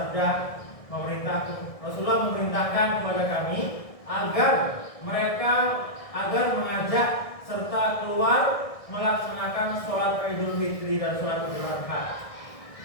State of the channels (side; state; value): right; late; 1.6 ms